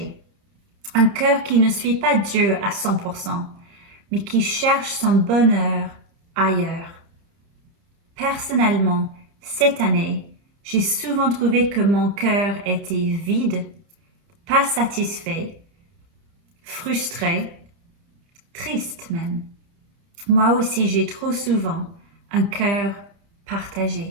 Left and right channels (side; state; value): left; late; 30 ms